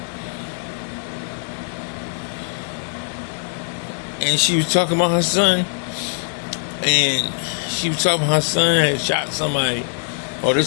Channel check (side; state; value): right; silent; 58 dB below the other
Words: and she was talking about her son, and she was talking about her son had shot somebody, or